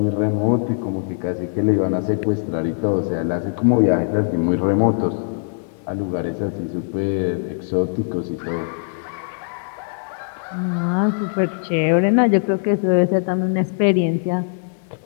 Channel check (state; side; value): silent; right; digital silence